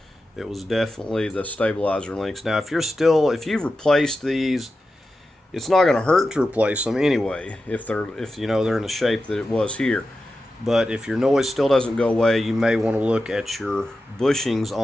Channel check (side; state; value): both; normal; correlation 0.92